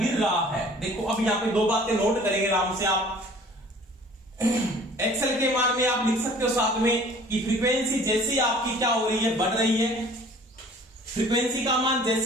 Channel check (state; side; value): normal; both; correlation 0.50